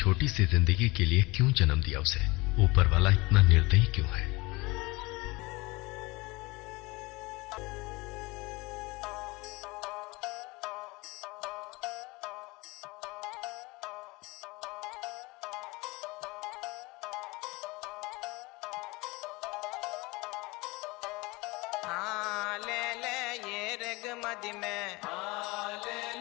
सी जिंदगी के लिए क्यों जन्म दिया उसे? ऊपर वाला इतना निर्दयी क्यों है?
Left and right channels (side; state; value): right; quieter; 23.8 dB